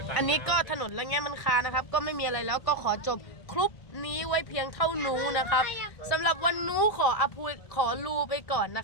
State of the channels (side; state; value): right; late; 1.5 ms